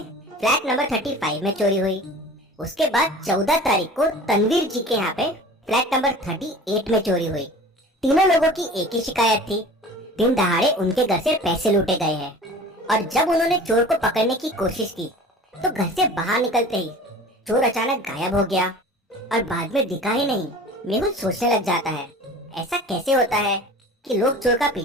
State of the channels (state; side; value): normal; both; correlation 0.41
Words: फ्लैट नंबर 35 में चोरी हुई। उसके बाद 14 तारीख को तनवीर जी के यहाँ पे फ्लैट नंबर 38 में चोरी हुई। तीनों लोगों की एक ही शिकायत थी, दिन दहाड़े उनके घर से पैसे लूटे गए हैं। और जब उन्होंने चोर को पकड़ने की कोशिश की तो घर से बाहर निकलते ही चोर अचानक गायब हो गया और बाद में दिखा ही नहीं। मेहुल सोचने लग जाता है, ऐसा कैसे होता है कि लोग चोर का